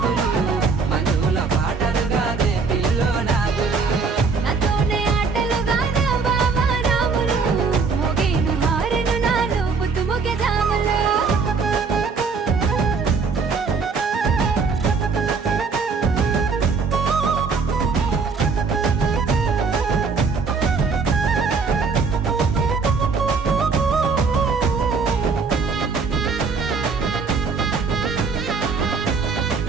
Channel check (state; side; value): quieter; left; 4.9 dB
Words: మంజుల పాటలు గాదే పిల్లో నాదులు నాతోనే ఆటలు గాదా బావా రాములు మోగేను హారను నాలో పొద్దుముకే జాములు